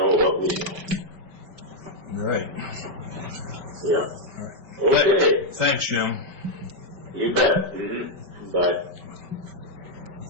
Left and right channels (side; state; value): left; late; 5.2 ms